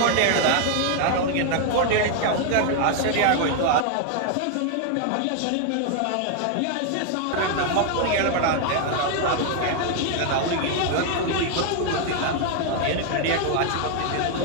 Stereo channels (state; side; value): different; both; correlation 0.00